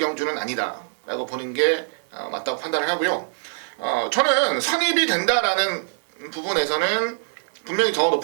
아니다라고 보는 게 맞다고 판단을 하고요. 저는 선입이 된다라는 부분에서는 분명히 더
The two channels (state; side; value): silent; left; 63 dB below the other